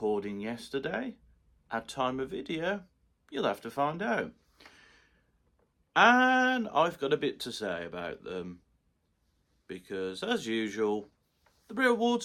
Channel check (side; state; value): both; identical; correlation 1.00